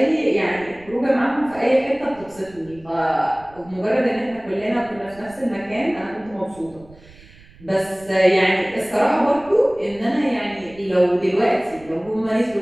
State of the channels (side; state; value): right; noise; rumble, 24 dB below the sound